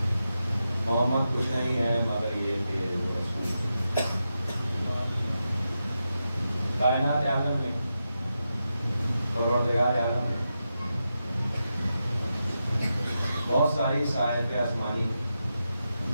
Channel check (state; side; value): inverted; both; correlation -0.88